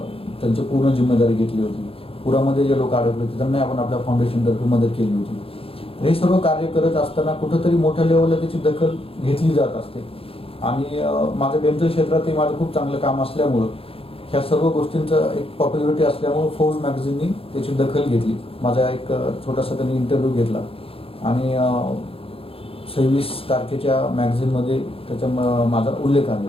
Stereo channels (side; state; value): right; late; 0.27 ms